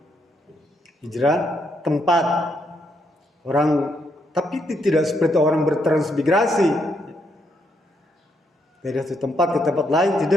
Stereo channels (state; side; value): normal; both; correlation 0.76